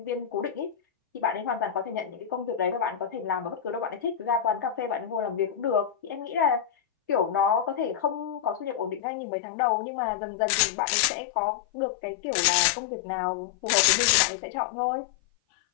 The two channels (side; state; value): right; drops out; at 9.0 s